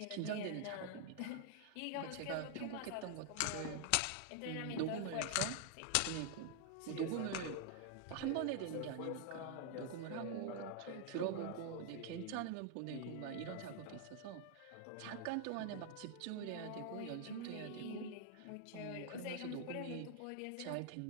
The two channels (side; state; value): both; different; correlation 0.00